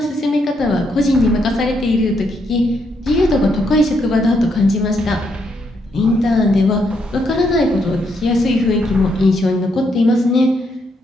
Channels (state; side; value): normal; both; correlation 0.76